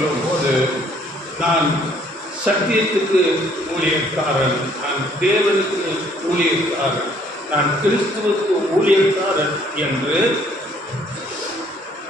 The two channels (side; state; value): both; normal; correlation 0.62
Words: போது நான் சத்தியத்துக்கு ஊழியக்காரன், நான் தேவனுக்கு ஊழியக்காரன், நான் கிறிஸ்துவுக்கு ஊழியக்காரன் என்று.